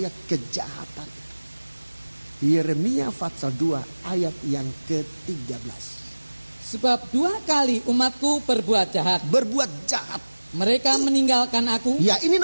kejahatan itu. Yeremia pasal 2 ayat yang ke-13. Sebab 2 kali umatku berbuat jahat. Berbuat jahat. Mereka meninggalkan aku. Ya, ini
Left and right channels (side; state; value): both; inverted; correlation -1.00